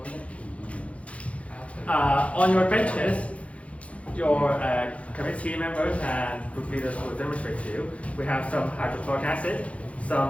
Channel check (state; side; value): late; right; 0.064 ms